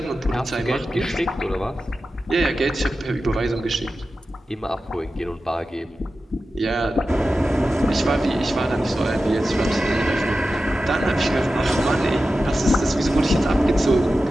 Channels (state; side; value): normal; both; correlation 0.93